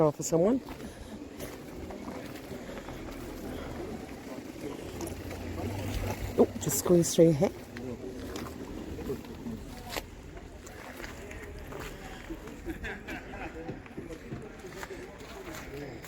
for someone. Oh, just squeeze through here.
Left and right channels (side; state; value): both; identical; correlation 1.00